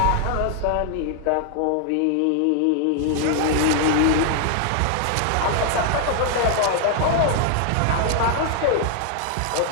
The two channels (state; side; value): different; both; correlation 0.00